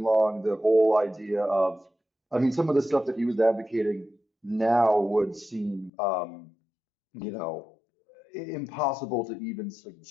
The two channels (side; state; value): right; drops out; at 5.9 s